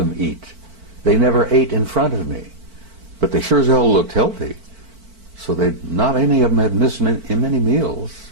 eat. They never ate in front of me. But they sure as hell looked healthy. So not any of them had missed many meals.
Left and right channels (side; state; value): left; late; 4.5 ms